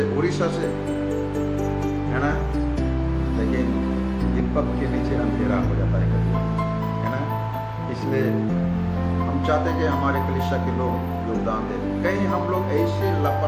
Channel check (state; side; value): identical; both; correlation 1.00